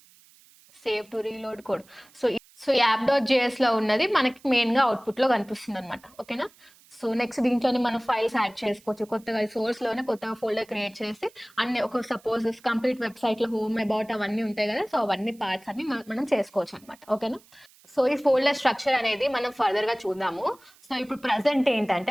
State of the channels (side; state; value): right; noise; hiss, 28 dB below the sound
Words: save to reload code. So యాప్.js లో ఉన్నది మనకి మెయిన్గా అవుట్పుట్లో కనిపిస్తుంది అనమాట. ఓకేనా. సో నెక్స్ట్ దీంట్లోనే మనం ఫైల్స్ యాడ్ చేసుకోవచ్చు. కొత్తగా సోర్స్లోనే కొత్తగా ఫోల్డర్ క్రియేట్ చేసి అన్ని ఒక సపోజ్ కంప్లీట్ వెబ్సైట్లో హోమ్ అబౌట్ అవన్నీ ఉంటాయి కదా, సో అవన్నీ పార్ట్స్ అన్ని మనం చేసుకోవచ్చు అనమాట. ఓకేనా. సో ఈ ఫోల్డర్ స్ట్రక్చర్ అనేది మనం ఫర్దర్గా చూద్దాము. సో ఇప్పుడు ప్రజెంట్